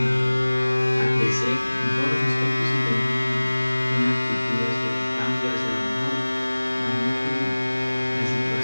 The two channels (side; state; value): both; inverted; correlation -1.00